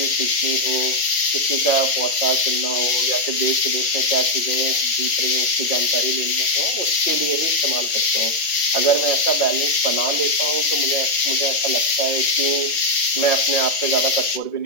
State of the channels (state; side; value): late; right; 5.9 ms